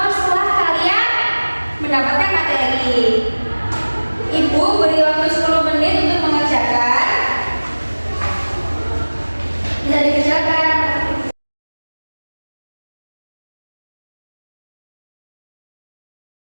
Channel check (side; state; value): both; inverted; correlation -1.00